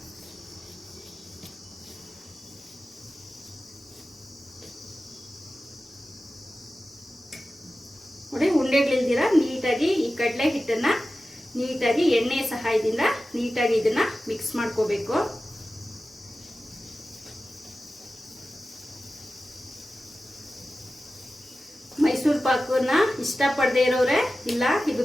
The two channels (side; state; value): both; normal; correlation 0.94